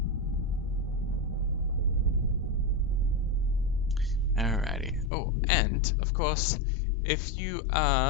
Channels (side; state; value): right; drops out; at 5.1 s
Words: Alrighty. Oh, and of course, if you